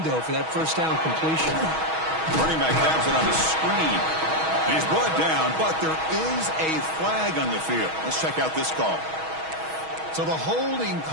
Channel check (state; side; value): late; left; 6.3 ms